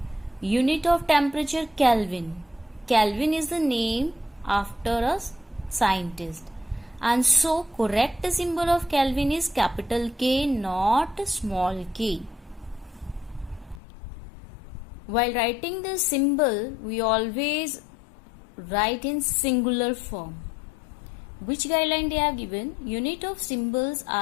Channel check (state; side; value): drops out; right; at 13.8 s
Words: Unit of temperature, Kelvin. Kelvin is the name after a scientist. And so correct symbol of Kelvin is capital K, not small k. While writing the symbol, we always write in singular form. Which guideline they have given? Unit of symbols